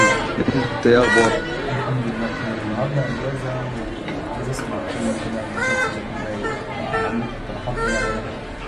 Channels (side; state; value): both; identical; correlation 1.00